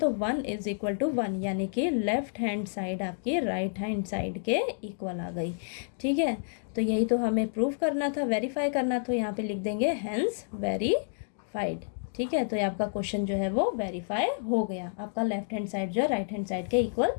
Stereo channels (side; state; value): right; silent; digital silence